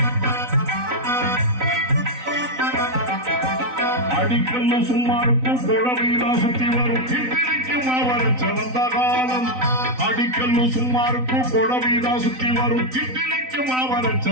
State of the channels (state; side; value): late; left; 3.9 ms